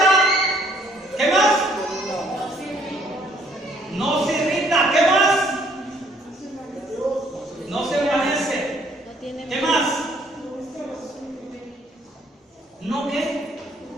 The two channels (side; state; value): both; normal; correlation 0.63